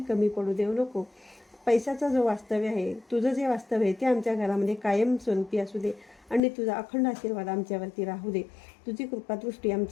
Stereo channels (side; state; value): right; drops out; at 6.4 s